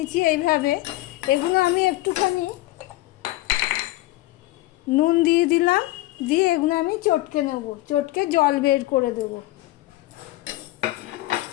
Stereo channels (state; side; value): quieter; right; 17.9 dB